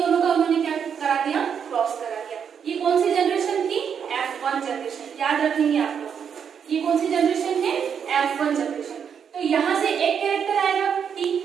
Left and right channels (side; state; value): left; quieter; 7.4 dB